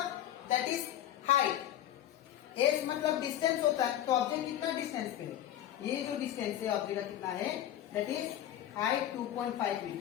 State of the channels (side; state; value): right; quieter; 11.9 dB